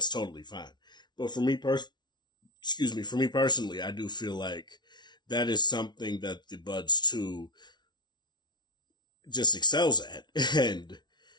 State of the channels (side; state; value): right; late; 0.20 ms